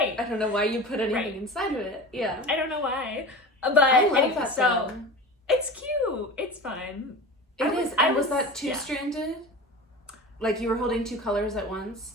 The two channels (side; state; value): both; normal; correlation 0.32